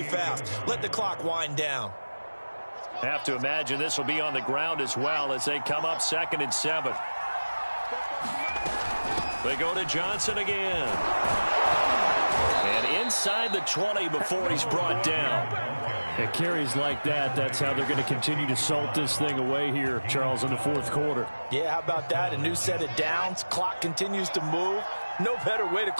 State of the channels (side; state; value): both; inverted; correlation -1.00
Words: fast. Let the clock wind down. Have to imagine this will be on the ground as well as they come up 2nd and 7. They go to Johnson again. And inside the 20 before he's brought down. At carries like that, that's how they're going to continue to salt this thing away here, Charles, in the fourth quarter. Yeah, how about that? A new set of downs. Clock continues to move. No better way to